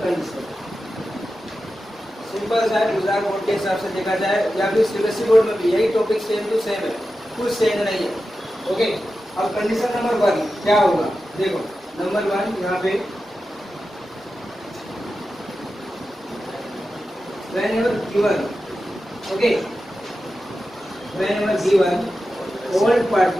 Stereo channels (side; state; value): both; normal; correlation 0.92